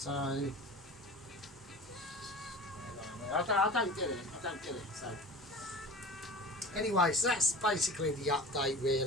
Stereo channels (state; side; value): normal; both; correlation 0.37